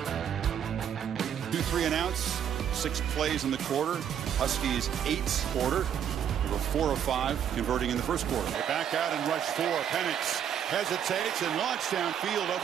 2-3 and outs. 6 plays in the quarter. Huskies 8 quarter. They were 4 of 5 converting in the first quarter. They back out and rush 4. Penix hesitates and launched downfield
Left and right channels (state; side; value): quieter; left; 9.0 dB